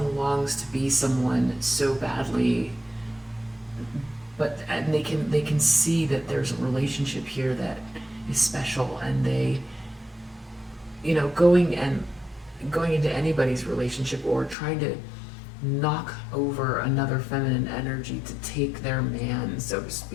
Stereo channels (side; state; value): right; drops out; at 14.6 s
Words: longs to be someone so badly, and they can see that there's a relationship here that is special, and they, going into anybody's relationship or trying to knock over another feminine energy to take their man, so to